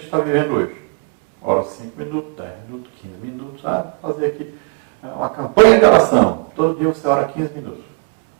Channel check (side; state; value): left; quieter; 33.9 dB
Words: está vivendo hoje. Ora 5 minutos, 10 minutos, 15 minutos, vou fazer aqui uma campanha de oração. Todo dia você ora 15 minutos.